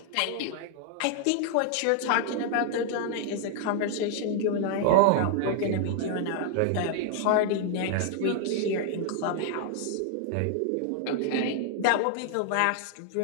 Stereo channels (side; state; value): both; different; correlation 0.00